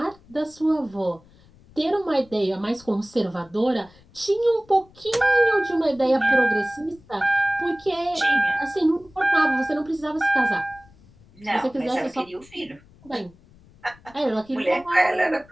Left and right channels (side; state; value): left; noise; rumble, 27 dB below the sound